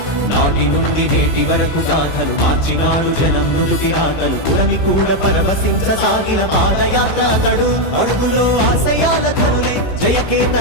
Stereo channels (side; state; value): right; late; 15 ms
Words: నాటి నుండి నేటి వరకు గాథలు మార్చినాడు జనం నుదుటి రాగలు పురమి కూడా పరవశించసాగిన పాదయాత్ర అతడు అడుగులో ఆశయాల కనులై